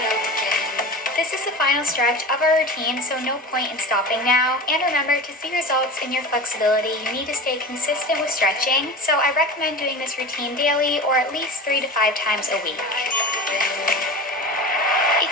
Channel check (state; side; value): normal; both; correlation 0.30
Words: up again. This is the final stretch of our routine, so no point in stopping now. And remember, to see results in your flexibility, you need to stay consistent with stretching. So I recommend doing this routine daily or at least 3 to 5 times a week. If